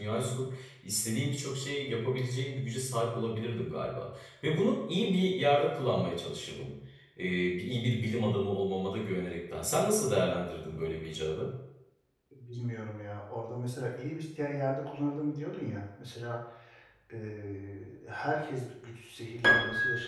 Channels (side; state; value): both; identical; correlation 1.00